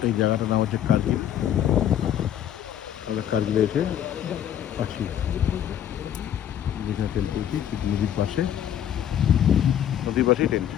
এই জায়গাটার নাম হচ্ছে কার্গিল। কার্গিলে এসে আছি, যেখানে টেন্ট করেছি ঠিক নদীর পাশেই টেন্ট।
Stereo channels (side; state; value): right; quieter; 10.3 dB